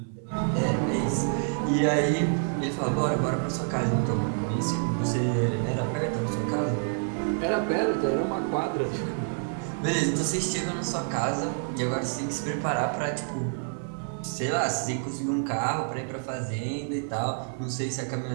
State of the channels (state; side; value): silent; left; 59 dB below the other